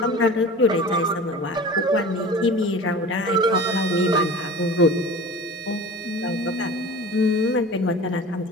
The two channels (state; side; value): normal; both; correlation 0.38